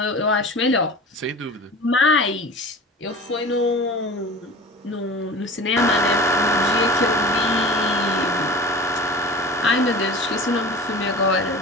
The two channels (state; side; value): normal; both; correlation 0.37